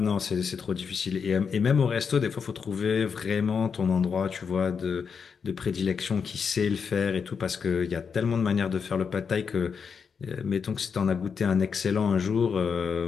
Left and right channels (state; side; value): quieter; right; 6.2 dB